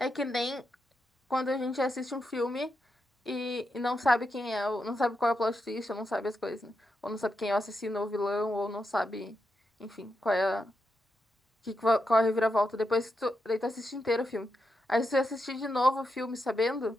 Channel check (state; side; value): normal; both; correlation 0.85